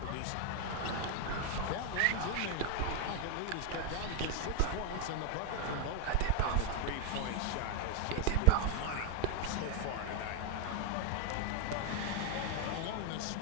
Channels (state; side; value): different; both; correlation 0.00